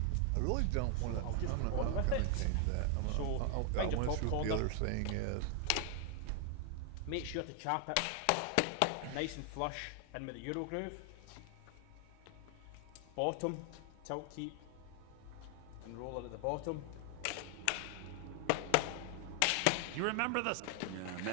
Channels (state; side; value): different; both; correlation 0.00